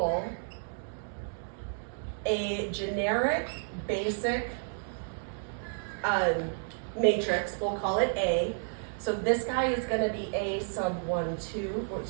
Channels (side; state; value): left; silent; digital silence